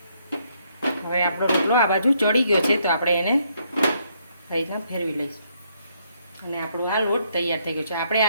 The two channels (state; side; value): inverted; both; correlation -0.72